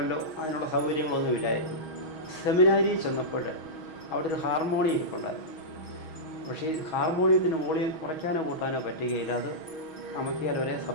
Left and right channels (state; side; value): late; right; 6.2 ms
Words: അതിനുള്ള സൗകര്യങ്ങളൊന്നുമില്ലായിരുന്നു. സെമിനാരിയിൽ ചെന്നപ്പോൾ അവിടെ ഒരു ഹാർമോണിയം ഇരിപ്പുണ്ടായിരുന്നു. പക്ഷേ ഈ ഹാർമോണിയത്തിന് വോളിയം കുറയ്ക്കാനോ കൂട്ടാനോ പറ്റുകയില്ല, അത് അമക്കിയാൽ ഒരേ